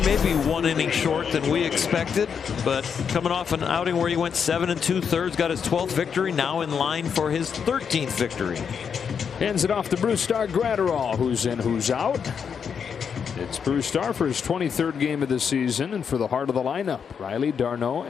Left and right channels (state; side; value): quieter; right; 6.9 dB